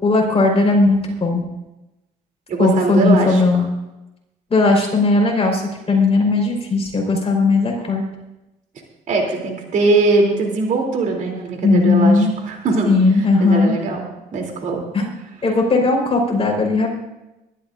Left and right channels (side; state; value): both; normal; correlation 0.58